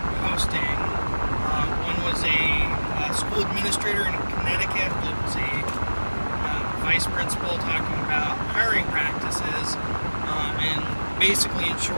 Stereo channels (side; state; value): both; inverted; correlation -1.00